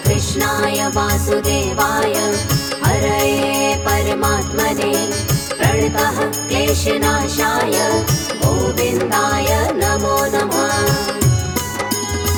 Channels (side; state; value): both; identical; correlation 1.00